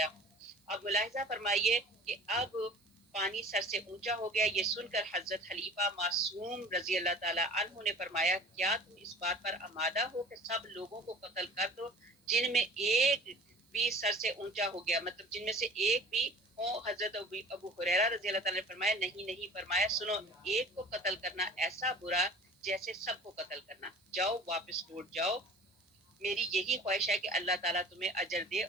ہوں. اب ملاحظہ فرمائیے کہ اب پانی سر سے اونچا ہو گیا. یہ سن کر حضرت خلیفہ معصوم رضی اللہ تعالیٰ عنہ نے فرمایا کیا تم اس بات پر آمادہ ہو کہ سب لوگوں کو قتل کر دو جن میں ایک بھی سر سے اونچا ہو گیا، مطلب جن میں سے ایک بھی ہو. حضرت ابو ہریرہ رضی اللہ تعالیٰ نے فرمایا نہیں. فرمایا سنو، ایک کو قتل کرنا ایسا برا جیسے سب کو قتل کرنا. جاؤ واپس لوٹ جاؤ. میری یہی خواہش ہے کہ اللہ تعالیٰ تمہیں اجر دے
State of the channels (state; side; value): normal; both; correlation 0.43